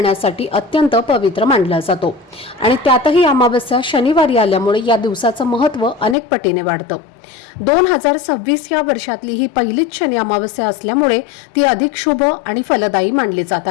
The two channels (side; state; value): right; drops out; at 6.2 s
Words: अत्यंत पवित्र मानला जातो आणि त्यातही अमावस्या शनिवारी आल्यामुळे या दिवसाचं महत्त्व अनेक पटीने वाढतं। 2026 या वर्षातली ही पहिलीच शनी अमावस्या असल्यामुळे ती अधिक शुभ आणि फलदायी मानली जात